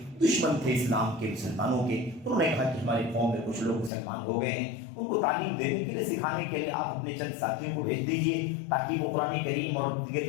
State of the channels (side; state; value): right; drops out; at 3.9 s